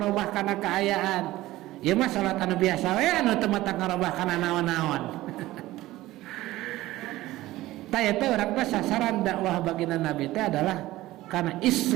kana kaayaan ieu mah salat anu biasa we anu teu patak ngarobah kana naon-naon taya teh urang teh sasaran dakwah baginda Nabi teh adalah karena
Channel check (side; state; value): left; quieter; 16.8 dB